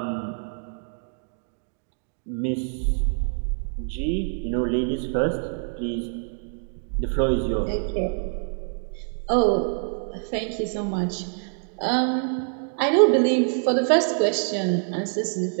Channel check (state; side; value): silent; left; digital silence